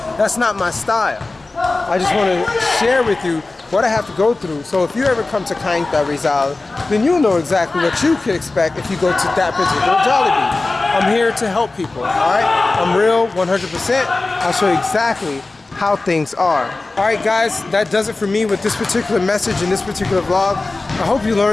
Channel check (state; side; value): quieter; right; 3.3 dB